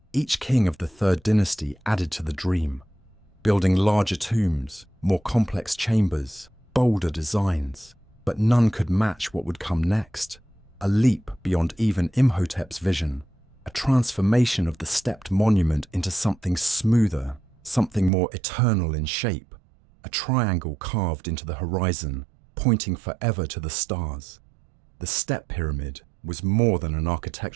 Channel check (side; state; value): left; drops out; at 18.1 s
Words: Each king of the Third Dynasty added to the dream, building larger tombs, more complex chambers, bolder designs, but none could match what would come next. A leap beyond even Imhotep's vision, a transformation of the stepped monument into something smoother, something more eternal in shape, a triangle carved into the horizon, pointing forever to the stars. The step pyramid was more than an